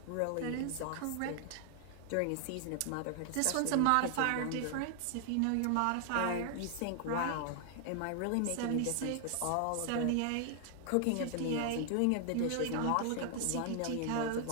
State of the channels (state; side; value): different; both; correlation 0.00